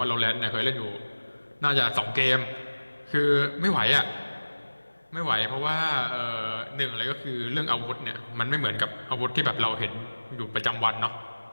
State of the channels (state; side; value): inverted; both; correlation -1.00